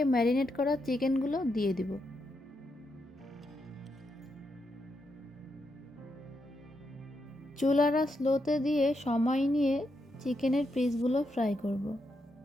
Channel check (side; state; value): both; normal; correlation 0.82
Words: ম্যারিনেট করা চিকেনগুলো দিয়ে দিব। চুলাটা স্লোতে দিয়ে সময় নিয়ে চিকেনের পিসগুলো ফ্রাই করব।